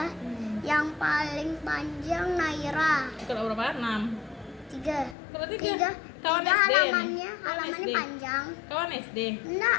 Yang paling panjang Naira Ikut berapa? 6. 3. Ikut 3. Tiga Kawan SD halamannya, nih? halamannya SD. panjang. Kawan SD.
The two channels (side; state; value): right; drops out; at 5.2 s